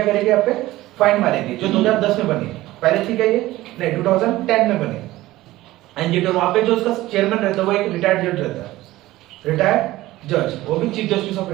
करेगी? आप पे फाइन मारेगी, जो 2010 में बनी। पहले ठीक है ये नहीं, 2010 में बनी एनजीटी। वहां पे जो उसका चेयरमैन रहता है वो एक रिटायर्ड जज रहता है, रिटायर्ड जज, वो भी चीफ जस्टिस ऑफ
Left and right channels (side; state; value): left; quieter; 17.0 dB